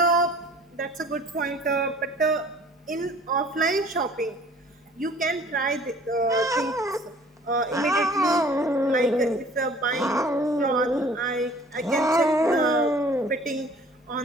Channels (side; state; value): both; normal; correlation 0.51